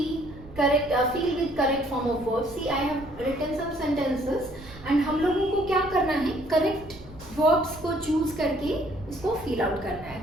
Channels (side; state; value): right; noise; rumble, 18 dB below the sound